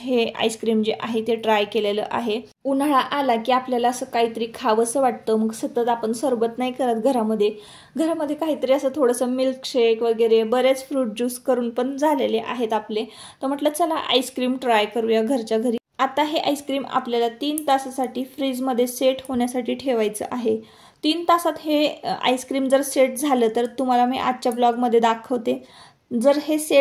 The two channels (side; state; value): both; identical; correlation 1.00